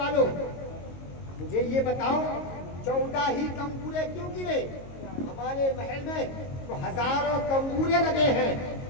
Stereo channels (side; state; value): right; late; 22 ms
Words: मुझे ये बताओ 14 ही कंगूरे क्यों गिरे? हमारे महल में तो हजारों कंगूरे लगे हैं,